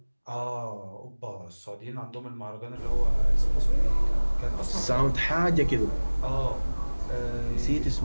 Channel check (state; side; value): inverted; both; correlation -1.00